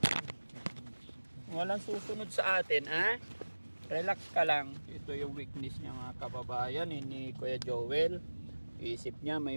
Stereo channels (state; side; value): inverted; both; correlation -1.00